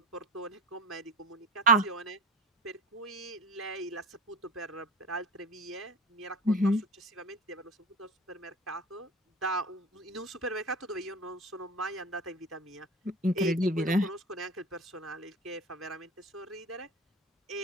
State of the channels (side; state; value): both; normal; correlation 0.33